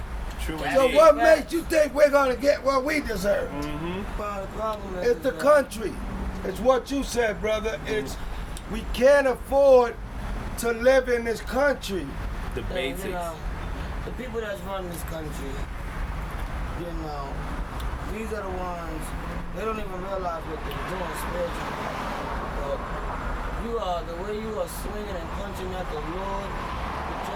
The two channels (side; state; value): both; identical; correlation 1.00